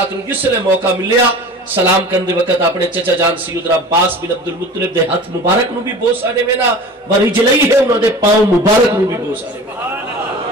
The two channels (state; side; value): normal; both; correlation 0.38